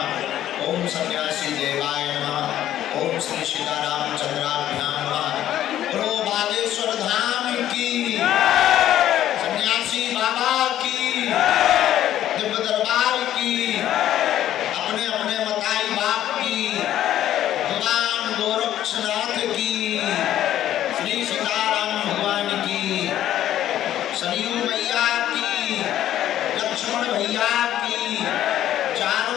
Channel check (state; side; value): quieter; right; 12.1 dB